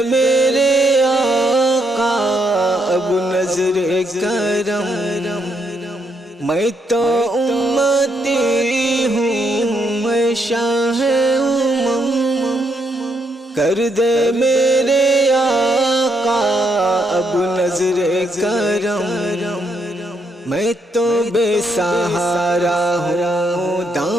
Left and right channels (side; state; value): both; normal; correlation 0.76